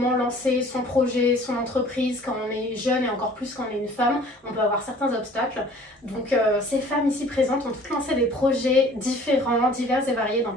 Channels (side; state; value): both; normal; correlation 0.51